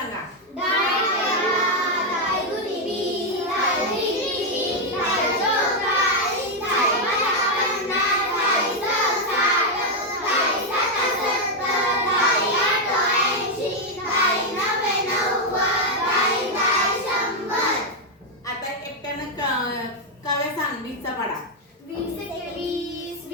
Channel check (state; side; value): normal; both; correlation 0.02